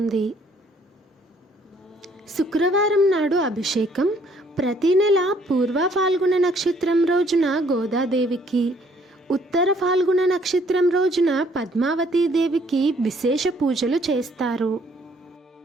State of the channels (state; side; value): normal; both; correlation 0.63